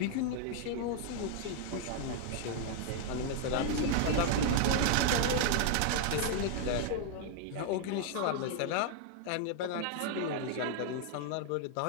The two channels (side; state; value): both; different; correlation 0.00